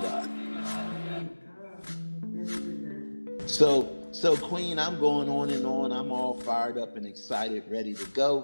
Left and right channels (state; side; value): inverted; both; correlation -1.00